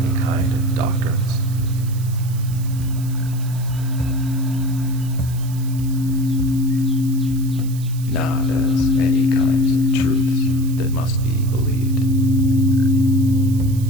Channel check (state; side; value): noise; right; hiss, 18 dB below the sound